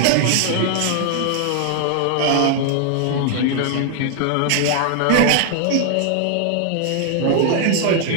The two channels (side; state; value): both; different; correlation 0.00